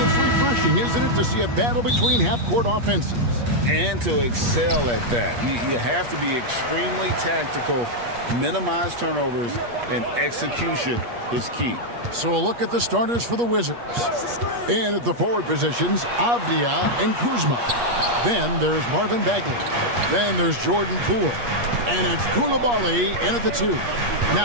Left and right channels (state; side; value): late; left; 8.4 ms